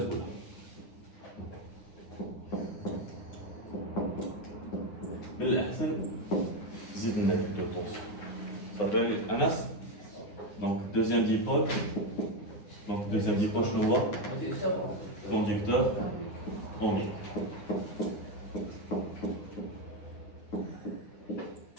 من الأحسن زيد لنا de tension. Ça fait Anas. Donc deuxième dipôle. Donc deuxième dipôle, je le vois. Conducteur ohmique.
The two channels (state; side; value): late; right; 9.8 ms